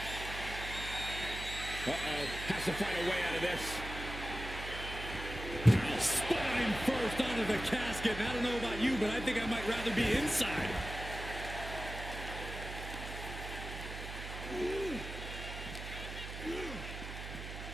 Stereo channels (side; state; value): right; noise; hum, 8 dB below the sound